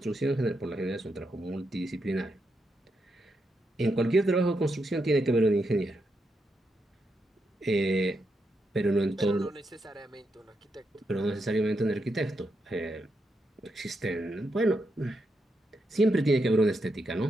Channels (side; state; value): both; normal; correlation 0.83